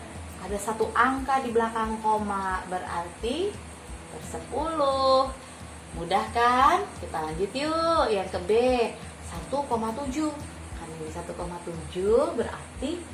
ada satu angka di belakang koma, berarti per 10. Mudah kan? Kita lanjut yuk, yang ke B, 1,7. Kan ini 1,7 berarti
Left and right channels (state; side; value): identical; both; correlation 1.00